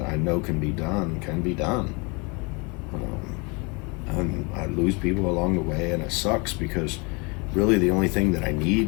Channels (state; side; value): quieter; right; 29.8 dB